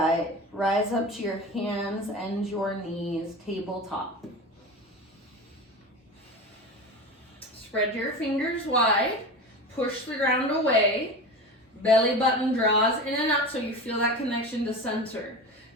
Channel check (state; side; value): normal; both; correlation 0.29